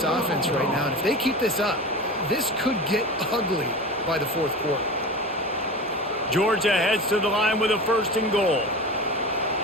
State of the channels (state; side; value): normal; both; correlation 0.30